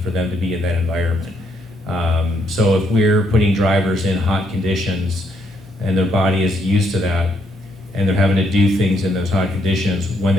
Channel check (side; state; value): both; normal; correlation 0.74